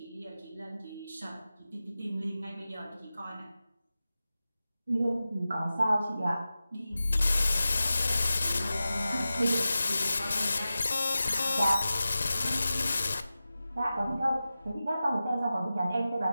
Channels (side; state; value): both; inverted; correlation -0.94